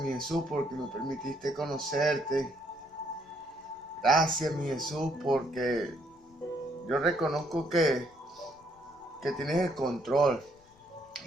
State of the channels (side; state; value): left; noise; rumble, 30 dB below the sound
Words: Jesús porque me permitiste conocerte. Gracias mi Jesús porque yo reconozco que tienes el control